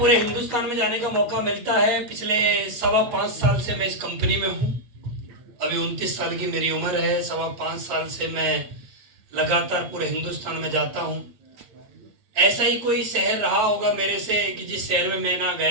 हिंदुस्तान में जाने का मौका मिलता है। पिछले 5.25 साल से मैं इस कंपनी में हूँ। अभी 29 साल की मेरी उम्र है। 5.25 साल से मैं लगातार पूरे हिंदुस्तान में जाता हूँ। ऐसा ही कोई शहर रहा होगा मेरे से कि जिस शहर में मैं ना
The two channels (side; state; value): left; late; 8.2 ms